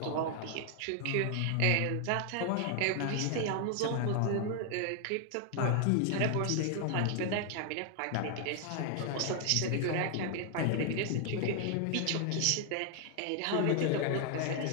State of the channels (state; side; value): different; both; correlation 0.00